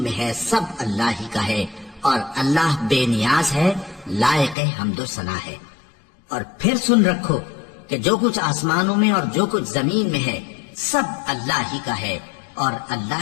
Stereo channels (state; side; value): drops out; right; at 4.5 s